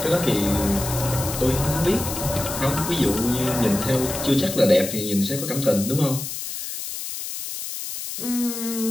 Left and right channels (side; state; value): left; noise; hiss, 7 dB below the sound